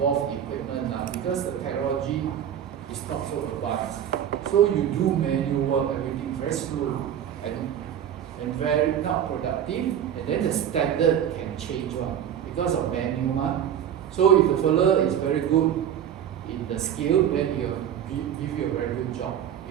equipment because the technology is not so advanced. So you do manual work, everything very slow and very not productive, and then the standard can change because of manual. So if the fellow is very good in the skill, then he will give you a very good job.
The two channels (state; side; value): quieter; left; 9.6 dB